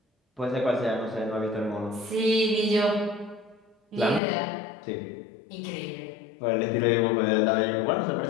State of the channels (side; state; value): right; drops out; at 4.2 s